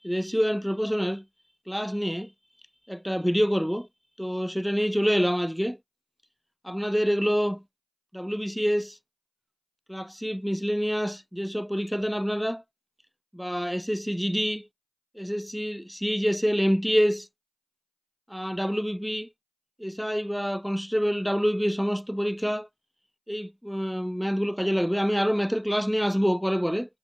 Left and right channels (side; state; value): both; identical; correlation 1.00